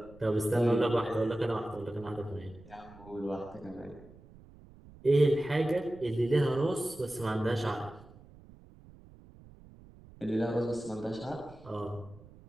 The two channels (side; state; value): right; noise; rumble, 22 dB below the sound